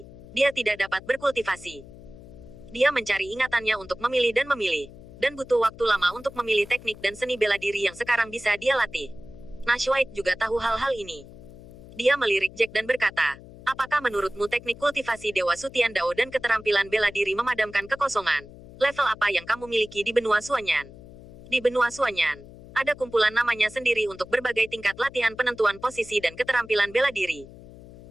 dia tidak dapat berkultivasi. Dia mencari ingatannya untuk memilih, dan butuh waktu lama untuk memilih teknik dan seni bela diri yang sekarang bisa dia latih. Nash White juga tahu hal-hal ini. Dia melirik Jack dan berkata, apakah menurutmu teknik kultivasi Dewa Sutian Dao dan keterampilan bela diri memadamkan kekosongan? Level apa yang kamu miliki di benua Suanyan? Di benua Suanyan, ada kumpulan namanya sendiri untuk berbagai tingkat latihan penentuan posisi dan keterampilan bela diri.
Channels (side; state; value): left; noise; hum, 18 dB below the sound